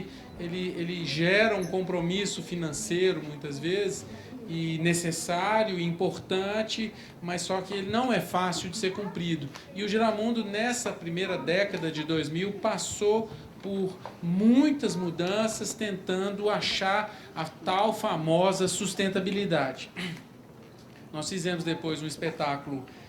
gera um compromisso financeiro, muitas vezes, e necessário e importante, mas só que ele não é fácil de ser cumprido. E o Giramundo, nessa primeira década de 2000, passou por muitas mudanças, tentando achar a tal famosa sustentabilidade. Nós fizemos depois um espetáculo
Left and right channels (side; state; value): both; identical; correlation 1.00